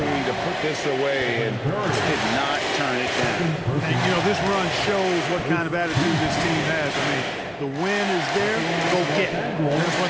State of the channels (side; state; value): both; identical; correlation 1.00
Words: to put this away and did not turn it down. And, you know, this run shows what kind of attitude this team has. I mean, the win is there, go get it. Here's